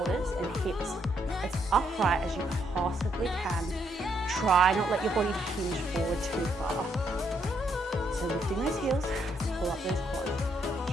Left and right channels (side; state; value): both; normal; correlation 0.74